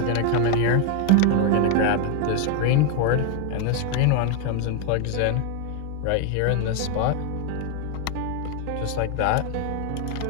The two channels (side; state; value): both; different; correlation 0.01